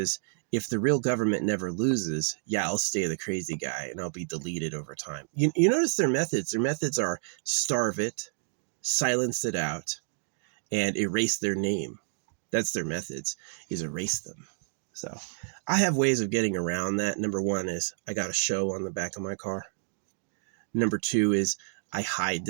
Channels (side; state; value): left; silent; digital silence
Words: if the real government never loses, yeah, I'll stay the crazy guy and I'll be deleted over time. You notice their methods. Their methods are starve it, silence it out, and erase their name. That's their methods, is erase them. So I have ways of getting around that. Number one is I got a show on the back of my car. Number two is I hide